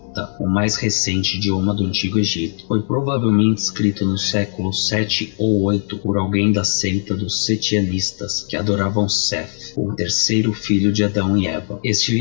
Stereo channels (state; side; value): silent; right; 64 dB below the other